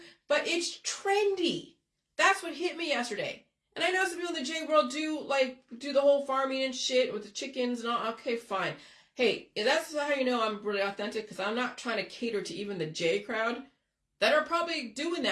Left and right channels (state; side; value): identical; both; correlation 1.00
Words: but it's trendy. That's what hit me yesterday. And I know some people in the J world do the whole farming and shit with the chickens and all. Okay, fine. Hey, that's how you know I'm really authentic, because I'm not trying to cater to even the J crowd that are probably doing